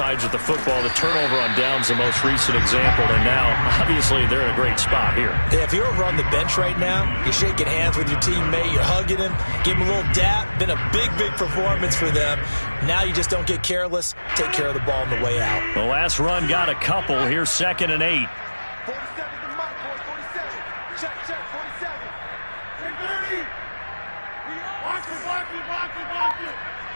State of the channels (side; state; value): both; inverted; correlation -1.00